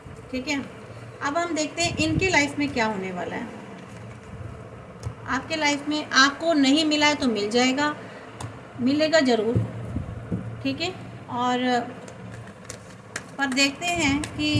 ठीक है, अब हम देखते हैं इनकी लाइफ में क्या होने वाला है। आपके लाइफ में आपको नहीं मिला है तो मिल जाएगा, मिलेगा ज़रूर। ठीक है, और पर देखते हैं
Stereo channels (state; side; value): identical; both; correlation 1.00